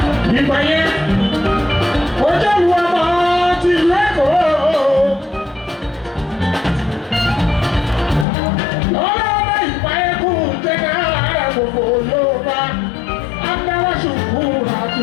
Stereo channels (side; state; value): right; drops out; at 8.2 s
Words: Ìgbà yẹn, ó jẹ́ ìwọ ọmọ ti ìlú Èkó. Lọ́wọ́lọ́wọ́ ìgbà yẹn kú jẹ́gẹ́ ara gbogbo Yorùbá. Agbára ṣùkú àti